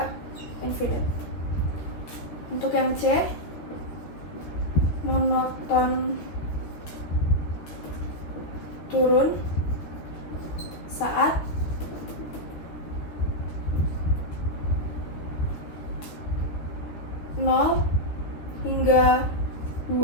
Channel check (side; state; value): right; late; 13 ms